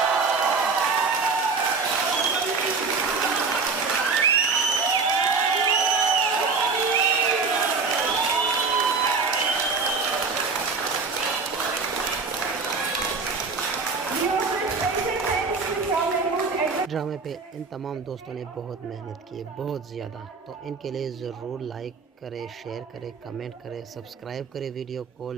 ड्रामे पे इन तमाम दोस्तों ने बहुत मेहनत की है, बहुत ज़्यादा। तो इनके लिए ज़रूर लाइक करें, शेयर करें, कमेंट करें, सब्सक्राइब करें, वीडियो को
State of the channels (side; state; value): left; quieter; 4.6 dB